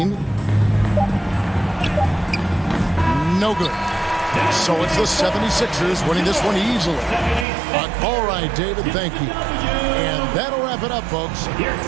No good. So it's the 76ers winning this one easily. But all right, David, thank you. And that'll wrap it up, folks.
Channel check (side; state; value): left; drops out; at 7.5 s